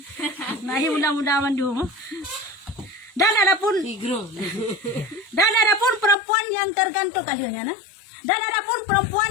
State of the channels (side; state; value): right; drops out; at 6.2 s